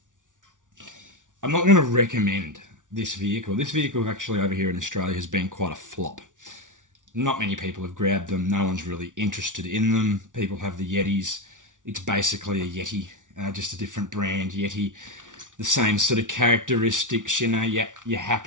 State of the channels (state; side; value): late; left; 0.87 ms